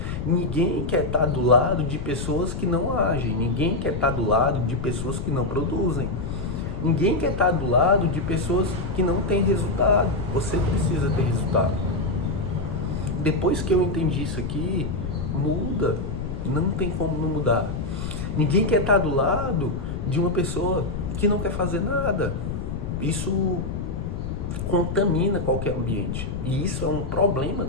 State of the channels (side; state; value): left; noise; rumble, 5 dB below the sound